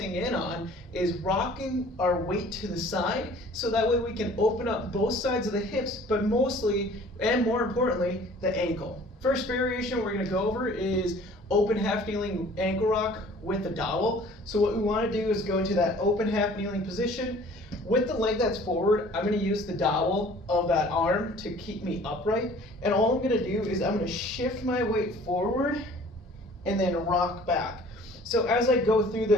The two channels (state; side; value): normal; both; correlation 0.50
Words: in on is rocking our weight to the side, so that way we can open up both sides of the hips, but mostly, and more importantly, the ankle. First variation we're going to go over is open half kneeling ankle rock with a dowel. So what we want to do is go into that open half kneeling position. With the leg that's forward, I'm going to use the dowel of that arm to keep me upright. And all I'm going to do is I'm going to shift my weight forward and then rock back. So as I go through